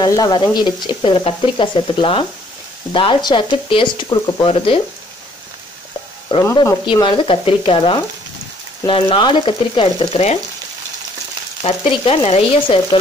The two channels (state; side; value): normal; both; correlation 0.62